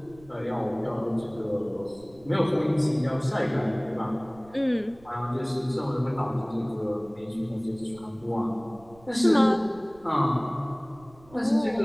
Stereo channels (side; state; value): right; noise; rumble, 25 dB below the sound